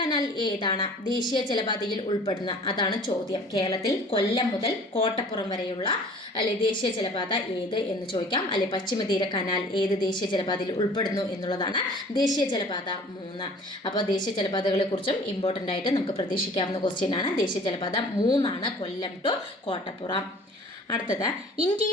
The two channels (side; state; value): both; normal; correlation 0.48